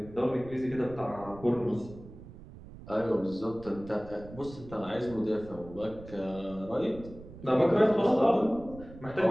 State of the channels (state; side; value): noise; right; rumble, 17 dB below the sound